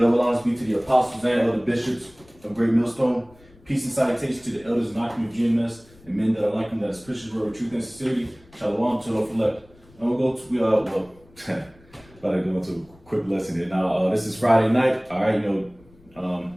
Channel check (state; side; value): noise; left; rumble, 27 dB below the sound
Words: honors be to the apostles and other bishops of Great Millstone. Peace and salutation to the elders and occupants of GMS and men that are like them, that is Christians, word of truth and sincerity. Shalom to the elect. And we'll go to, about to go into a quick lesson here. Now, this is Friday night. All right,